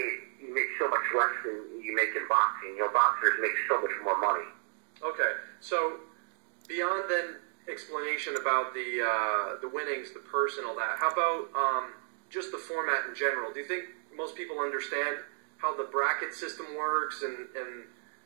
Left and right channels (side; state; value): left; silent; 56 dB below the other